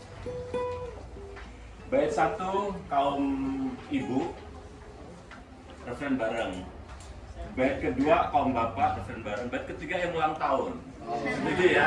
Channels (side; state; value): both; identical; correlation 1.00